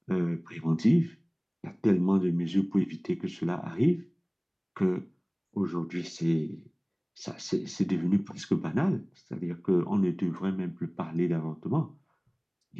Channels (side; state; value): both; identical; correlation 1.00